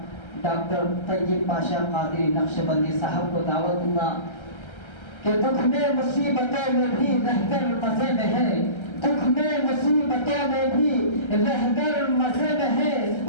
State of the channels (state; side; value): late; right; 1.3 ms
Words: ڈاکٹر طیب پاشا قادری نقشبندی صاحب کو دعوت دوں گا کہ دکھ میں مصیبتوں میں بھی رہ کر مزے میں ہے. دکھ میں مصیبتوں میں بھی رہبر مزے میں ہے،